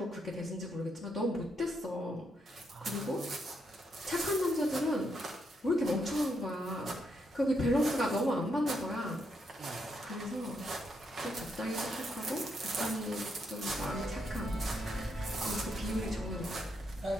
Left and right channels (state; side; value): normal; both; correlation 0.79